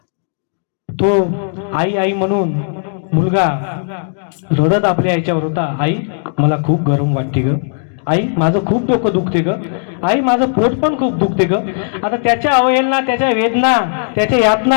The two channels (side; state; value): right; silent; digital silence